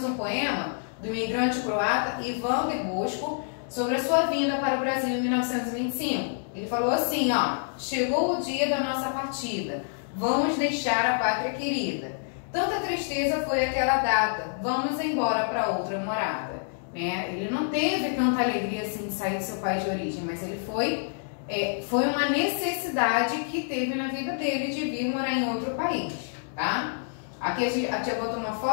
um poema do imigrante croata Ivan de Bosco sobre a sua vinda para o Brasil em 1925. Ele falou assim, ó: chegou o dia da nossa partida, vamos deixar a pátria querida. Tanta tristeza foi aquela data, vamos embora para outra morada. Né? Ele não teve tanta alegria assim de sair do seu país de origem, mas ele foi uma necessidade que teve na vida dele de vir morar em outro país, tá? Aqui a tia botou uma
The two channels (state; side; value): silent; right; digital silence